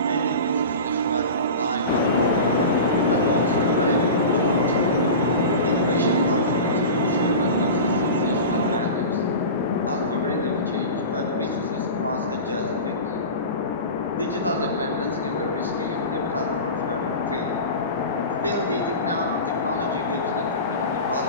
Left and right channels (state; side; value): inverted; both; correlation -0.31